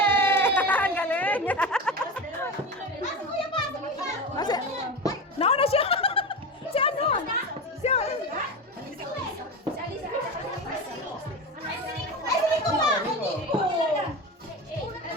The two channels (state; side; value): normal; both; correlation 0.23